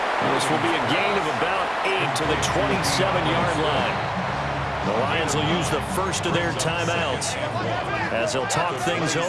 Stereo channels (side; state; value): both; identical; correlation 1.00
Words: This will be a gain of about 8 to the 27-yard line. The Lions will use the first of their timeouts as they'll talk things